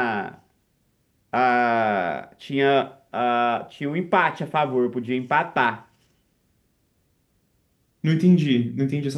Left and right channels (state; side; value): identical; both; correlation 1.00